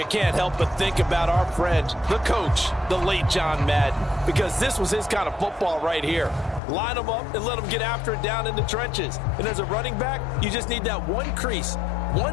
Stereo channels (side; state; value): right; drops out; at 6.6 s